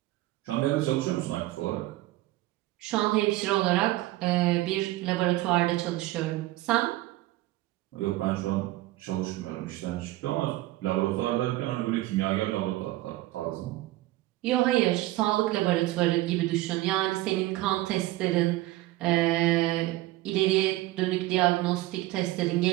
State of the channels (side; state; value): left; quieter; 17.4 dB